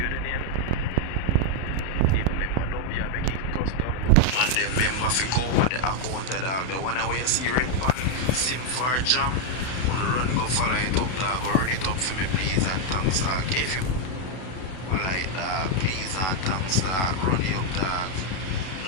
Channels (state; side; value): late; right; 32 ms